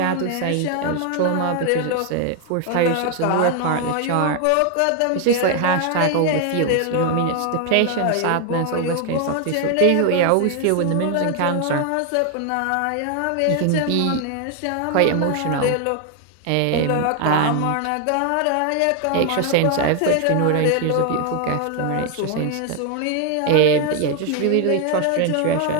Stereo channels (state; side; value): different; both; correlation 0.00